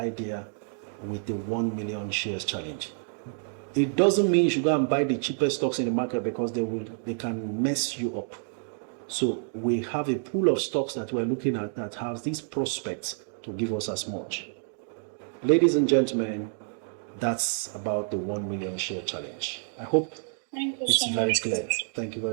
with the 1 million shares challenge. It doesn't mean you should go and buy the cheapest stocks in the market, because they can mess you up. So we have a pool of stocks that we're looking at that has these prospects to give us as much. Ladies and gentlemen, that's about the 1 million share challenge. I hope it's very clear. Thank you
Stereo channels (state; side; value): silent; left; 59 dB below the other